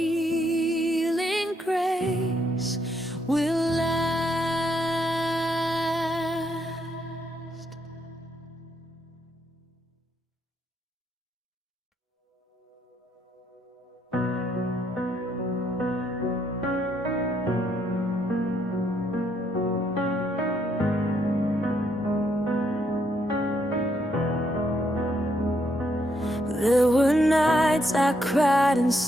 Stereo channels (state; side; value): normal; both; correlation 0.74